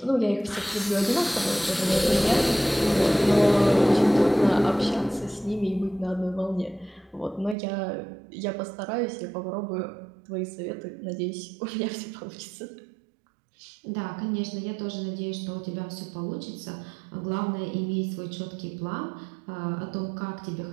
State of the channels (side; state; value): left; drops out; at 7.6 s